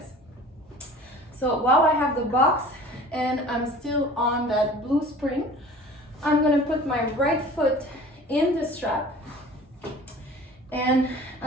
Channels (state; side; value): normal; both; correlation 0.44